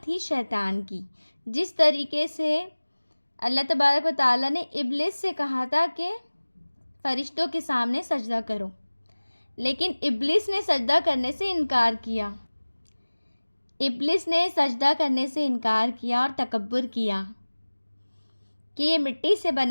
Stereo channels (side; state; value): both; inverted; correlation -1.00